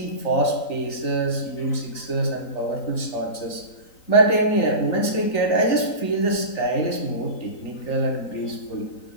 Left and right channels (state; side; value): late; right; 3.9 ms